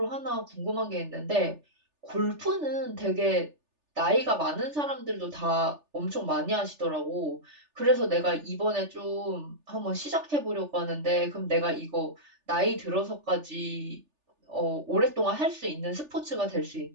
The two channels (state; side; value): late; left; 3.4 ms